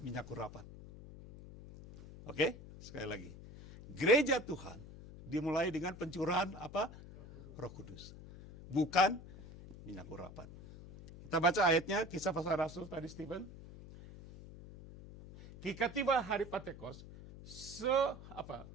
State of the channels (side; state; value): left; noise; hum, 15 dB below the sound